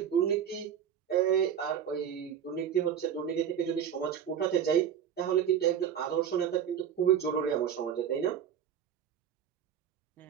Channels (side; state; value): left; quieter; 8.8 dB